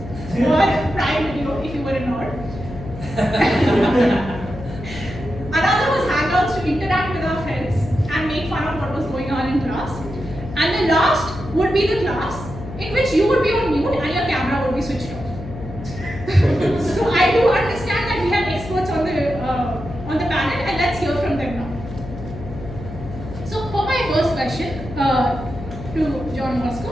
or Prime Video if you were in Nord. Another was Hangouts to interact with our friends and make fun of what was going on in class. And the last would be the class in which you would be on mute and your camera would be switched off. So I do understand that we have experts on the panel, and let's hear from them now. So for my first question to John Bosco,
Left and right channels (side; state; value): left; noise; hum, 11 dB below the sound